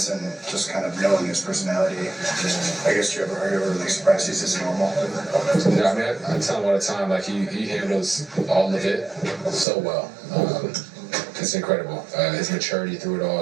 and just kind of knowing his personality? I guess are you ever like surprised he's this normal? Yeah, I tell him all the time, like he handles all of it so well. It's incredible. His maturity through it all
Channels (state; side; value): drops out; left; at 9.7 s